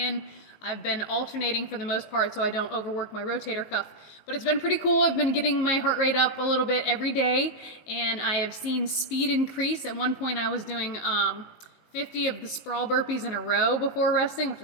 I've been alternating for the most part so I don't overwork my rotator cuff, but it's been pretty cool. I've been getting my heart rate up a little bit every day and I have seen speed increase. At one point I was doing 50 of the sprawl burpees in a row before resting, which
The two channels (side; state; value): right; late; 19 ms